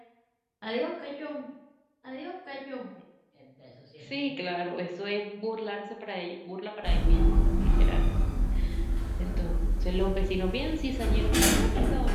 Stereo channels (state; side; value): identical; both; correlation 1.00